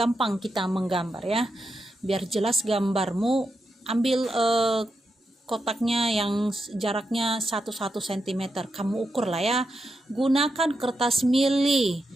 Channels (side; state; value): both; normal; correlation 0.86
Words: kita menggambar ya. Biar jelas gambarmu, ambil kotaknya yang jaraknya 1 cm. Kamu ukur lah ya. Gunakan kertas mili